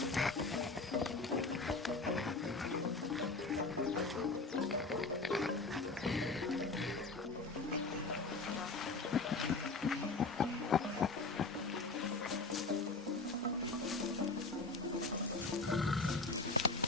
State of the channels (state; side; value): quieter; right; 3.6 dB